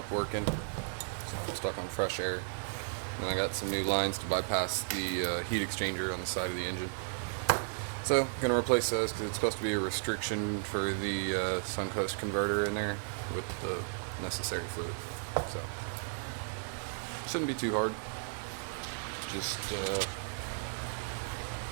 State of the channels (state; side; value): silent; left; digital silence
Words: working, so I'm stuck on fresh air. And I got some new lines to bypass the heat exchanger on the side of the engine. So, gonna replace those because it's supposed to be a restriction for the Suncoast converter in there with the necessary fluid. So, shouldn't be too hard. Just